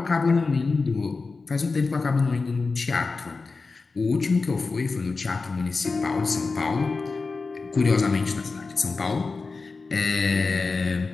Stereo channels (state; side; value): quieter; right; 4.1 dB